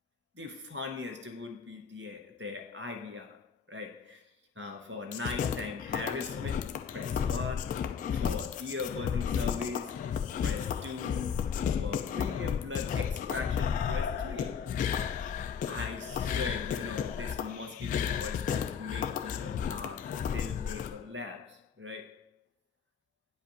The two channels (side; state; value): right; quieter; 6.7 dB